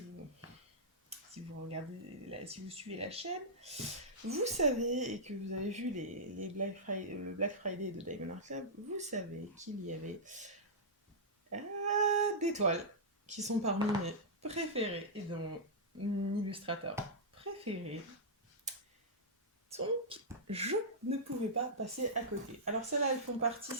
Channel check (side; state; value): both; normal; correlation -0.11